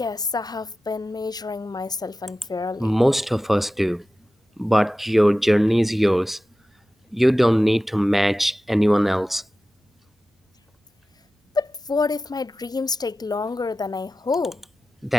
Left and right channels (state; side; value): normal; both; correlation 0.94